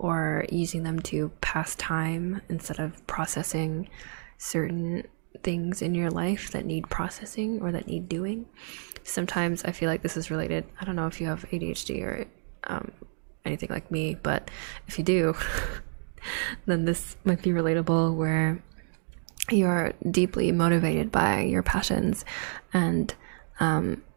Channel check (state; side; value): silent; left; digital silence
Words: using them to pass time instead of processing certain things in your life that need processing or that need doing. Sometimes I feel like this is related. I don't know if you have ADHD or anything like me, but if you do, then this might be relatable, where you're deeply motivated by your passions and